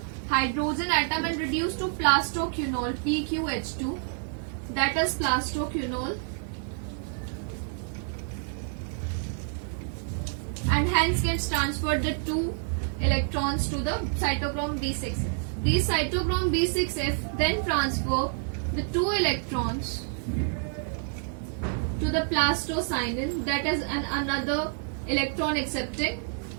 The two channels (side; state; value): left; silent; 59 dB below the other